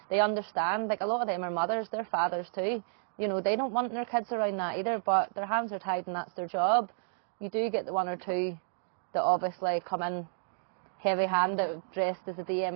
They understand. A lot of them are mothers, they're fathers too. They don't want their kids around that either, but their hands are tied and that's their job. You do get the one or two that obviously come in heavy-handed, dressed as a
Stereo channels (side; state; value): left; silent; digital silence